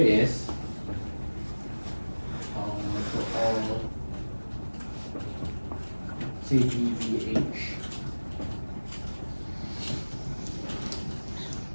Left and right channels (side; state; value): both; inverted; correlation -1.00